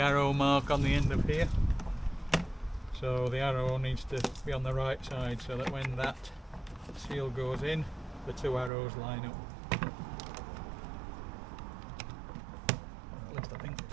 arrow mark on the end of here. So the arrow needs to be on the right side so that when that seal goes in, the two arrows line up. At least I think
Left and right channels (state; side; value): drops out; left; at 8.7 s